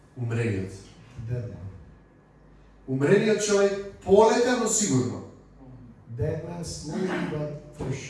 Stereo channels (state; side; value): identical; both; correlation 1.00